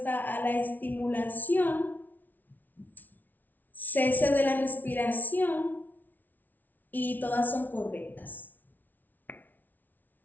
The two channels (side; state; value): right; late; 0.082 ms